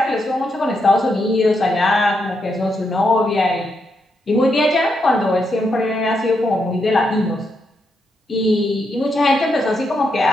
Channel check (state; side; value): normal; both; correlation 0.81